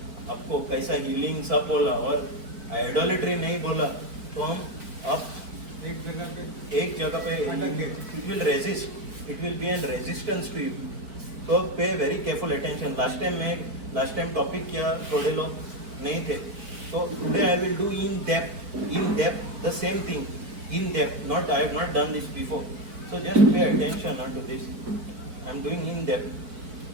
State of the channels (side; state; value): left; late; 4.5 ms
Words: आपको कैसा healing सब बोला और idolatry नहीं बोला, तो हम अब एक जगह पे it will resist. It will be an resistance to you. So pay very careful attention. Last time topic किया थोड़े लोग नहीं थे. So today I will do in depth the same thing. In depth. Not I have not done this before. So just pay attention to this. I am doing in depth.